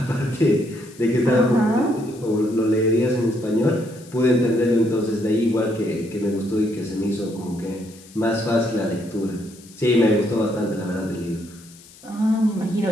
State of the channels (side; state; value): left; noise; hiss, 23 dB below the sound